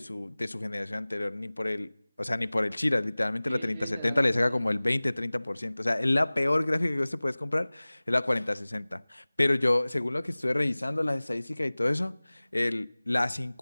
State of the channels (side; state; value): both; inverted; correlation -0.99